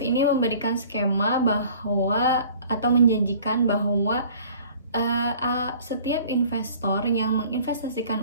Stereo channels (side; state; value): both; inverted; correlation -0.50